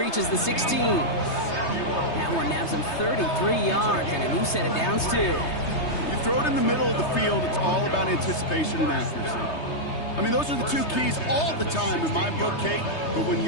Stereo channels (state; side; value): late; right; 3.2 ms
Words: the 16. That one nabs him 33 yards and a new set of downs, too. You throw it in the middle of the field, it's all about anticipation and accuracy. I mean, those are the two keys all the time in my book, Kate. But when